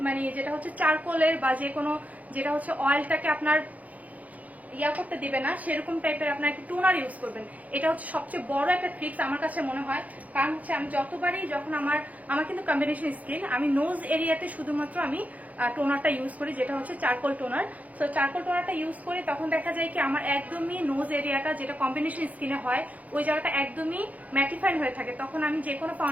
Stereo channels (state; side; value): late; left; 0.074 ms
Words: মানে যেটা হচ্ছে চারকোলের বা যে কোনো যেটা হচ্ছে অয়েলটাকে আপনার ইয়া করতে দিবে না, সেরকম টাইপের আপনার একটু টোনার ইউজ করবেন। এটা হচ্ছে সবচেয়ে বড় একটা ট্রিক্স আমার কাছে মনে হয়। কারণ হচ্ছে আমি যতবারই যখন আমার কিন্তু কম্বিনেশন স্কিন, আমি নোজ এরিয়াতে শুধুমাত্র আমি টোনারটা ইউজ করি, যেটা হচ্ছে চারকোল টোনার। সো চারকোল টোনারটা ইউজ করি, তখন দেখা যায় কি আমার একদমই নোজ এরিয়াটা যেটা কম্বিনেশন স্কিনে হয়, ওই জায়গাটা একদমই ম্যাটিফাইড হয়ে থাকে। তখন আমি যে কোনো